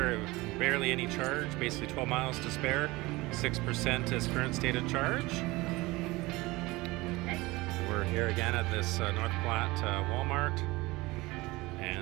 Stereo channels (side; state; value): left; quieter; 21.4 dB